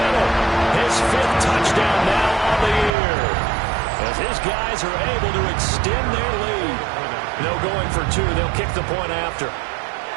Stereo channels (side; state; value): left; drops out; at 3.0 s